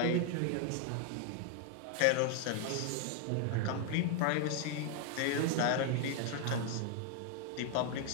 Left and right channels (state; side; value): different; both; correlation 0.00